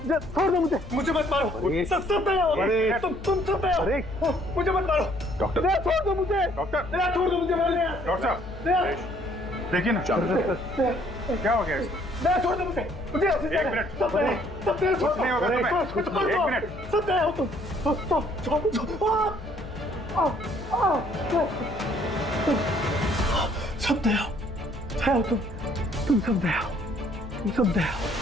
छोड़ दो मुझे, मुझे मत मारो। सब दया हो, तुम सब दया हो, मुझे मत मारो। डॉक्टर, दया छोड़ दो मुझे, डॉक्टर, दया छोड़ दो मुझे, डॉक्टर साहब, दया, देखिए ना क्या हो गया इसको? दया छोड़ दो मुझे, मुझे एक मिनट, सब दया छोड़ नहीं होगा तुम्हें। एक मिनट, सब दया हो तुम, सब दया हो तुम सब दया हो, तुम सब दया हो।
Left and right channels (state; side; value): noise; left; hum, 13 dB below the sound